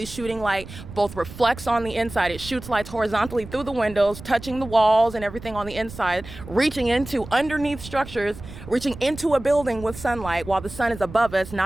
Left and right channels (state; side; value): noise; right; rumble, 14 dB below the sound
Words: shooting light, both reflects on the inside. It shoots lights horizontally through the windows, touching the walls and everything on the inside, reaching into underneath structures, reaching into a building with sunlight while the sun is above us,